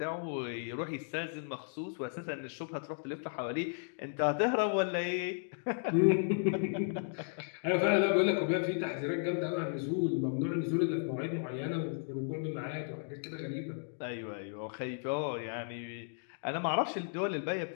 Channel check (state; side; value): silent; right; digital silence